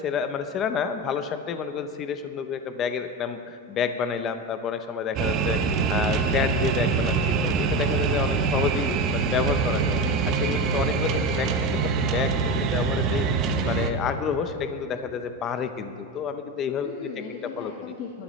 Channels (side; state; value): both; normal; correlation 0.21